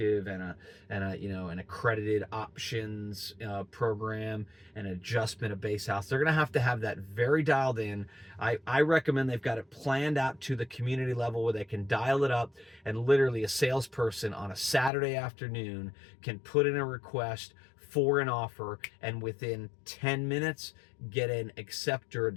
and an accredited options program and adjustment of base house. They're going to have that very dialed in. I recommend they've got it planned out to the community level where they can dial it up, and literally a salesperson on a Saturday afternoon can put in a request for an offer and within 10 minutes get an accept or a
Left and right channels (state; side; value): drops out; right; at 14.9 s